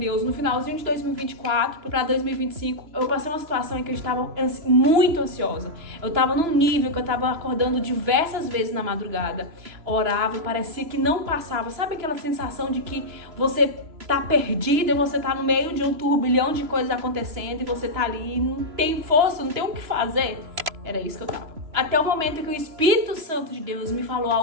no finalzinho de 2024 para 2025. Eu passei uma situação em que eu estava muito ansiosa. Eu estava num nível que eu estava acordando diversas vezes na madrugada. Orava e parecia que não passava. Sabe aquela sensação de que você tá perdida e você tá no meio de um turbilhão de coisas acontecendo e você tá ali e não tem força, não tem o que fazer? Era isso que eu tava. Até o momento em que o Espírito Santo de Deus me falou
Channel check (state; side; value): late; left; 3.0 ms